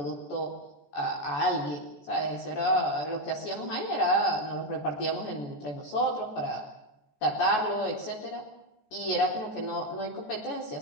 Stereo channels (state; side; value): late; right; 14 ms